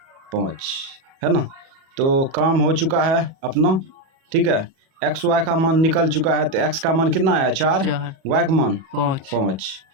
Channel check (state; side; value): late; left; 37 ms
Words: 5 है ना। तो काम हो चुका है अपना, ठीक है। x y का मान निकल चुका है, तो x का मान कितना आया, 4, y का मान 5।